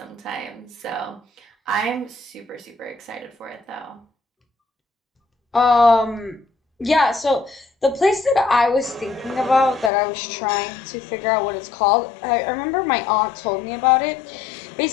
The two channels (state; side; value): drops out; right; at 9.9 s